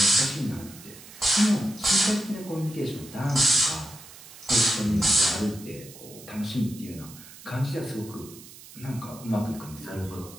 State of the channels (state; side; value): noise; right; hiss, 18 dB below the sound